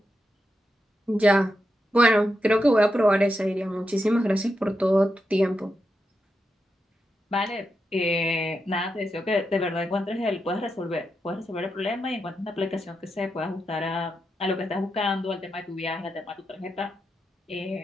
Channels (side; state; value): both; normal; correlation 0.86